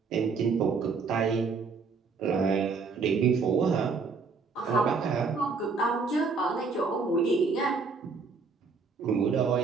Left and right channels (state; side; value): quieter; left; 4.8 dB